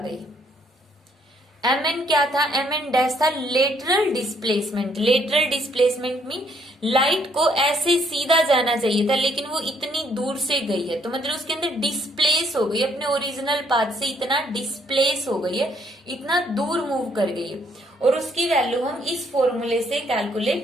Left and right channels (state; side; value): normal; both; correlation 0.68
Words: एम एन क्या था, एम एन डैश था lateral displacement. Lateral displacement mean light को ऐसे सीधा जाना चाहिए था लेकिन वो इतनी दूर से गई है, तो मतलब उसके अंदर डिस्प्लेस हो गई, अपने ओरिजिनल पाथ से इतना डिस्प्लेस हो गई है, इतना दूर मूव कर गई है, और उसकी वैल्यू हम इस फॉर्मूले से